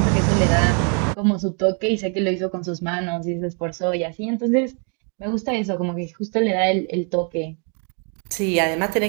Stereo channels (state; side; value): quieter; left; 40.0 dB